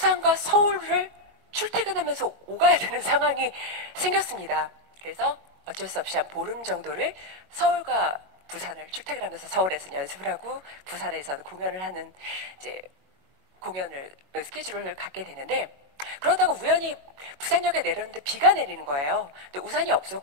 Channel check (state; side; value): late; left; 21 ms